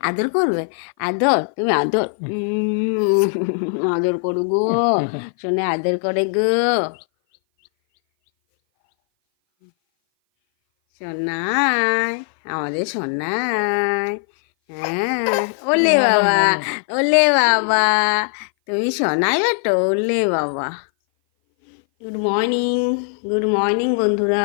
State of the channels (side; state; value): right; silent; 58 dB below the other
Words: আদর করবে? আদর, তুমি আদর আদর করু গো শোনে, আদর করে গো সোনাই, আমাদের সোনাই। হ্যাঁ, ওলে বাবা, ওলে বাবা, তুমি সোনাই বেটো, ওলে বাবা। গুড মর্নিং, গুড মর্নিং